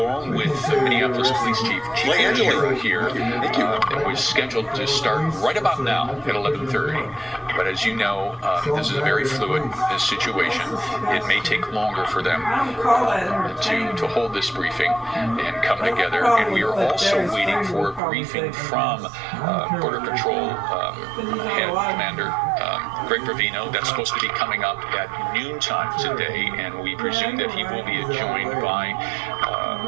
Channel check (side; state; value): left; drops out; at 18.0 s